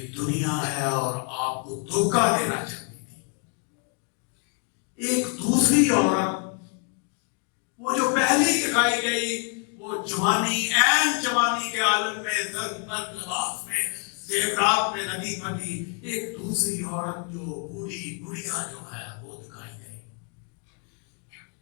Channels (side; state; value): right; quieter; 37.7 dB